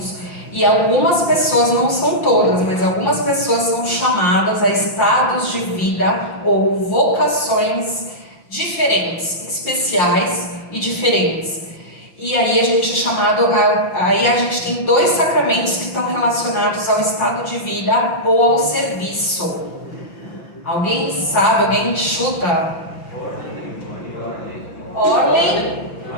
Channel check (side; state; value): right; late; 5.9 ms